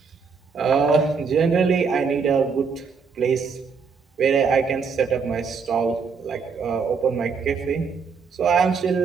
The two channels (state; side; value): quieter; left; 5.5 dB